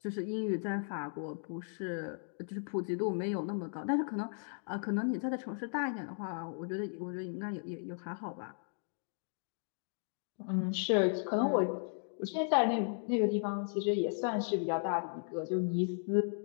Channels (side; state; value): right; silent; digital silence